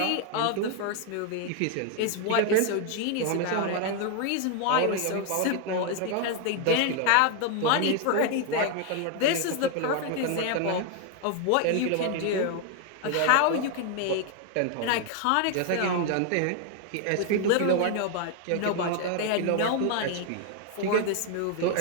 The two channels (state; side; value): different; both; correlation 0.01